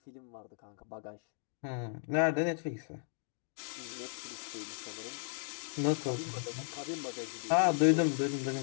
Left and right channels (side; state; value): right; silent; digital silence